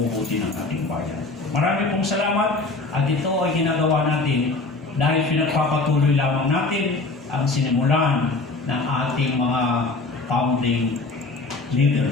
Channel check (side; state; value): right; quieter; 3.4 dB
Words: ng ating bayan. Marami pong salamat at ito ay ginagawa natin dahil pinagpapatuloy lamang natin ang sinimulan ng ating mga founding